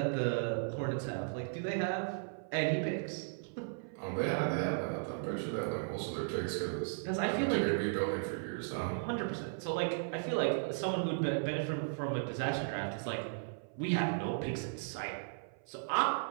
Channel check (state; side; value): silent; left; 54 dB below the other